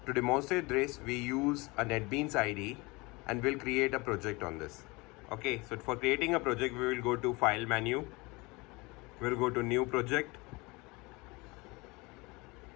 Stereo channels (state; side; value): quieter; right; 25.1 dB